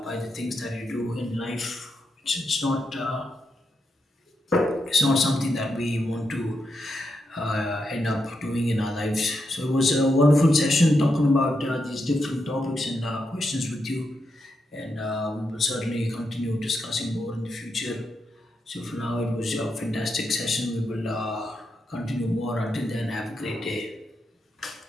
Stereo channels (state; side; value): normal; both; correlation 0.84